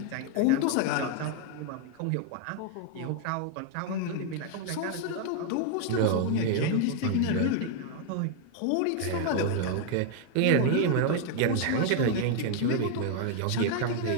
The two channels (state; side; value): different; both; correlation 0.00